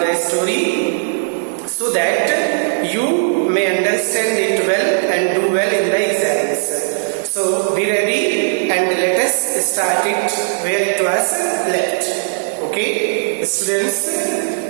the story, so that you may understand it well and do well in the exams. So be ready and let us start it where it was left. Okay, students,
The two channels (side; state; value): left; silent; digital silence